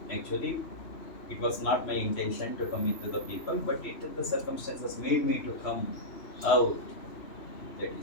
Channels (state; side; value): late; right; 3.0 ms